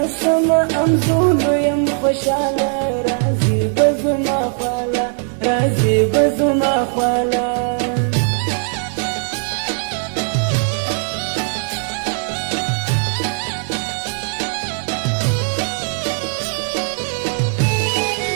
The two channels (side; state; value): left; silent; 56 dB below the other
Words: شم انځولو یم خوشاله راځي به زما خواله راځي به زما خواله